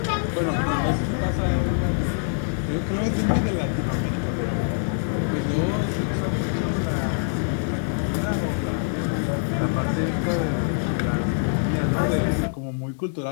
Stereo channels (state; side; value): silent; right; digital silence